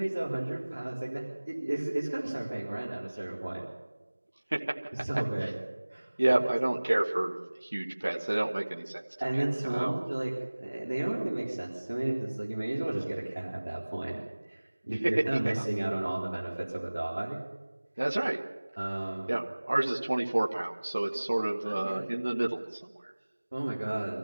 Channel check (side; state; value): both; inverted; correlation -1.00